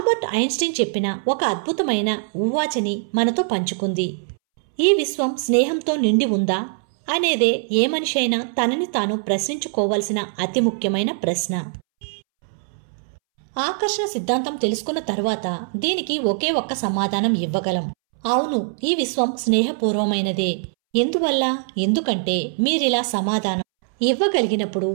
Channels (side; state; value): left; silent; 64 dB below the other